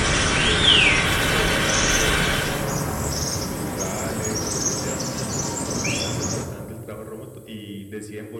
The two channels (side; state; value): both; identical; correlation 1.00